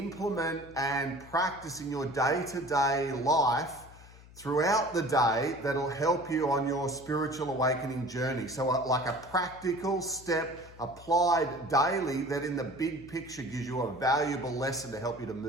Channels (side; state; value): left; noise; hum, 21 dB below the sound